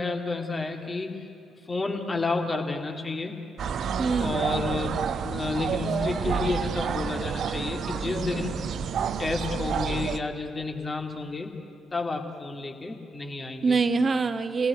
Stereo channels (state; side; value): normal; both; correlation 0.80